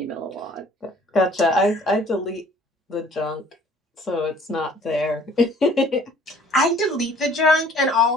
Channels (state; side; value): normal; both; correlation 0.54